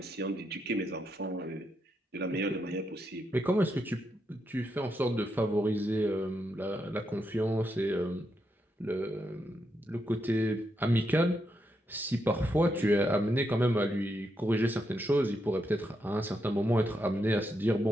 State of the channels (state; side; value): normal; both; correlation 0.82